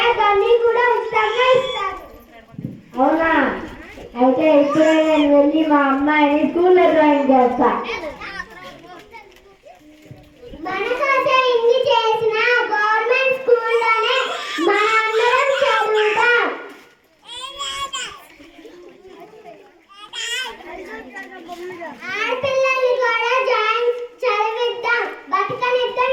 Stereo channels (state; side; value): identical; both; correlation 1.00